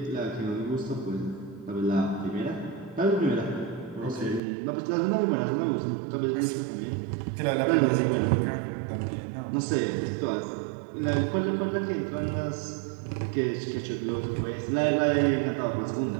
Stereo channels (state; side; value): drops out; left; at 4.4 s